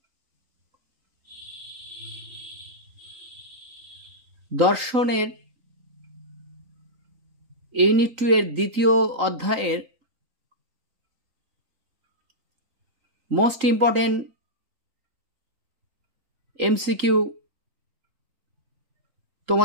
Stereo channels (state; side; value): late; left; 3.8 ms